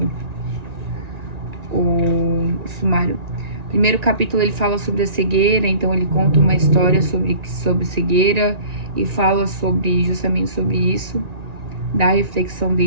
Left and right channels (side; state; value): left; late; 1.9 ms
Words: o sumário. Primeiro capítulo ele fala sobre a cegueira, então ele conta uma história sobre cegueira e fala justamente sobre isso, da reflexão